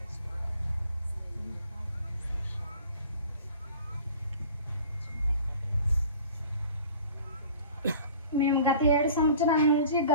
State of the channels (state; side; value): inverted; both; correlation -0.45